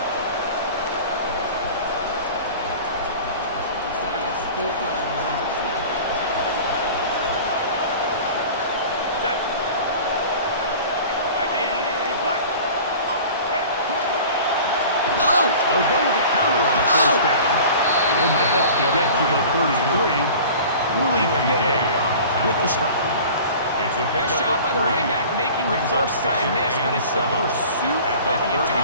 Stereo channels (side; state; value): both; inverted; correlation -0.41